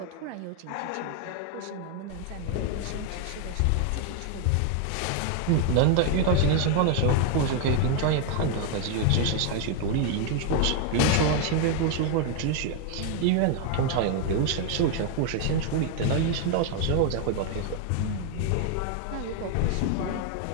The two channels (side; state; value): both; different; correlation 0.01